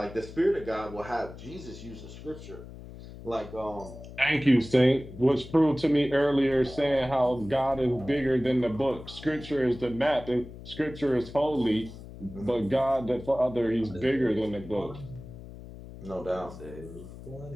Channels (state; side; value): noise; left; hum, 15 dB below the sound